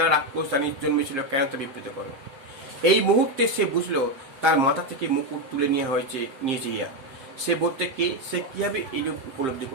আর আক্রোশ জানিয়ে জন্মেছিল, কেন তা বিবৃত করো। এই মুহূর্তে সে বুঝলো তার মাথা থেকে মুকুট তুলে নিয়েছে ইয়া। সে বলতে কে, সে কিভাবে এই উপলব্ধি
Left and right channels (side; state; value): left; late; 7.6 ms